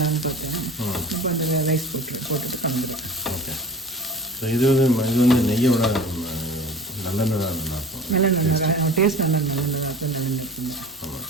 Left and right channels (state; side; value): normal; both; correlation 0.39